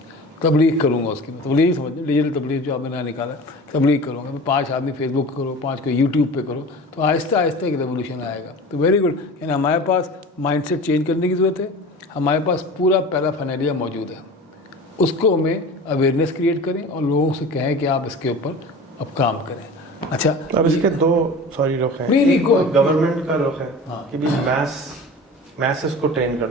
تبلیغ کروں گا, اس کی تبلیغ سمجھ لیں, ڈیجیٹل تبلیغ جو آپ نے نہ نکالا, تبلیغ کروں گا, میں 5 آدمی فیس بک کرو, 5 کو یوٹیوب پہ کرو, تو آہستہ آہستہ ایک ریولیوشن آئے گا. تو ویری گڈ. یعنی ہمارے پاس مائنڈ سیٹ چینج کرنے کی ضرورت ہے. ہمارے پاس پورا پیرافینیلیا موجود ہے, اس کو ہمیں اویئرنیس کریٹ کریں اور لوگوں سے کہیں کہ آپ اس کے اوپر اب کام کریں. اچھا اب اس کے دو رخ ہیں. ایک گورنمنٹ کا رخ ہے کہ بھی میسز کو ٹرین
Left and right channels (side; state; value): both; normal; correlation 0.36